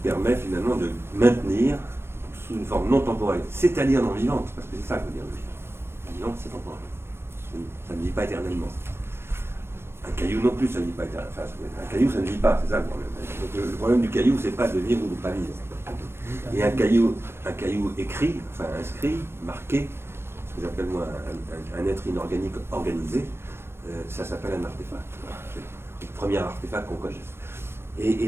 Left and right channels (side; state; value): left; late; 0.12 ms